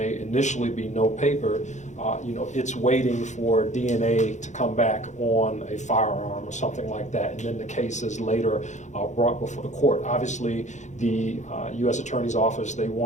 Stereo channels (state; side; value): late; right; 0.34 ms